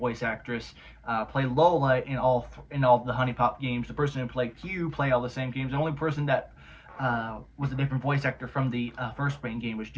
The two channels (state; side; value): identical; both; correlation 1.00